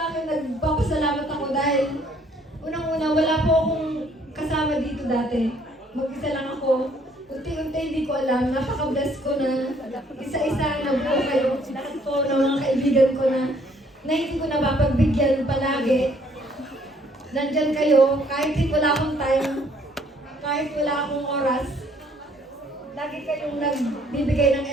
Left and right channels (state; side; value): normal; both; correlation 0.63